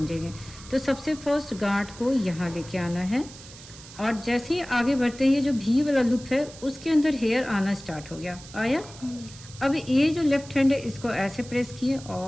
तो सबसे फर्स्ट गांठ को यहाँ लेके आना है और जैसे ही आगे बढ़ते हैं, ये जो भी वाला लुप है उसके अंदर हेयर आना स्टार्ट हो गया, आया। अब ये जो लेफ्ट हैंड है इसको ऐसे प्रेस किए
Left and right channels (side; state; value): right; noise; hiss, 18 dB below the sound